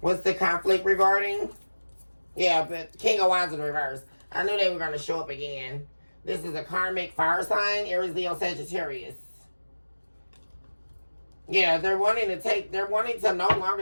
the conflict regarding? Yeah, but King of Wands in reverse. I knew they were going to show up again. This is a karmic fire sign, Aries, Leo, Sagittarius. Yeah, they're wanting to no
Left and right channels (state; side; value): inverted; both; correlation -1.00